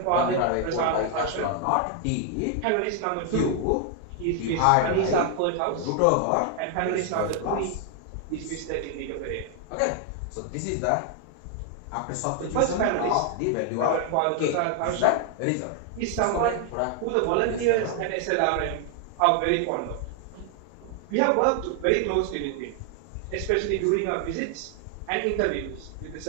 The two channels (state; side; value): different; both; correlation 0.00